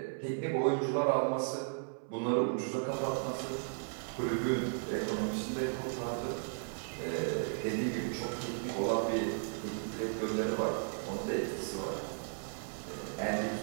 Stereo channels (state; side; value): silent; left; 54 dB below the other